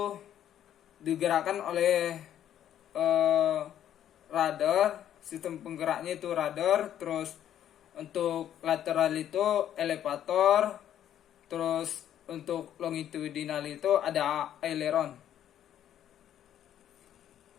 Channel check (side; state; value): right; quieter; 10.7 dB